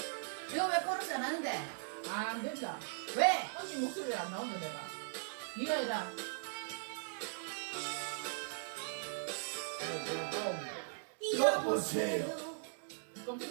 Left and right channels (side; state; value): left; silent; digital silence